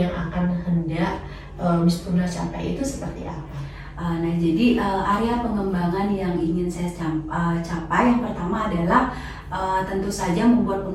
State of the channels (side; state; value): both; identical; correlation 1.00